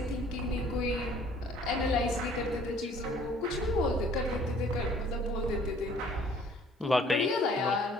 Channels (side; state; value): both; normal; correlation 0.56